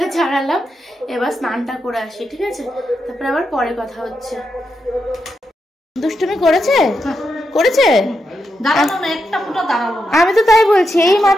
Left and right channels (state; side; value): normal; both; correlation 0.85